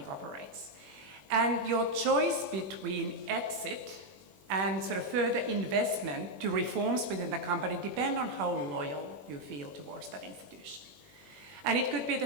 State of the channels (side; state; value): left; late; 21 ms